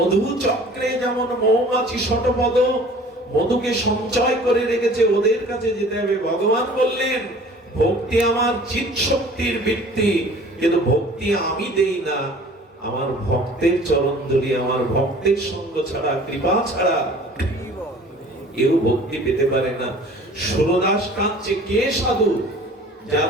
চক্রে যেমন মৌমাছি শতপদ মধুকে সঞ্চয় করে রেখেছে, ওদের কাছে যেতে হবে। ভগবান বললেন, ভক্তি আমার চিৎ শক্তির বৃত্তি, কিন্তু ভক্তি আমি দেই না। আমার ভক্তের চরণ ধরি, আমার ভক্তের সঙ্গ ছাড়া, কৃপা ছাড়া কেউ ভক্তি পেতে পারে না। সুরদাস কাঁদছে, কে সাধু?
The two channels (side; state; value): both; normal; correlation 0.48